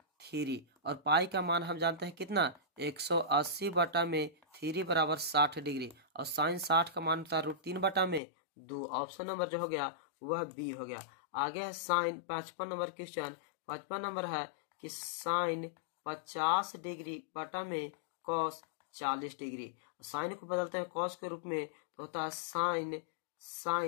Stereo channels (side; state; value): right; drops out; at 8.2 s